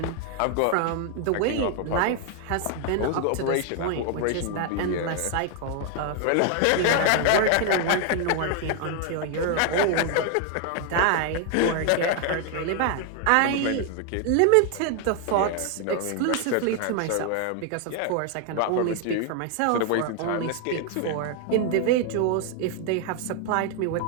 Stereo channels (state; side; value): different; both; correlation 0.01